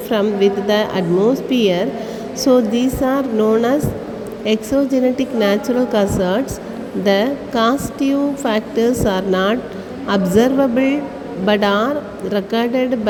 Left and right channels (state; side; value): identical; both; correlation 1.00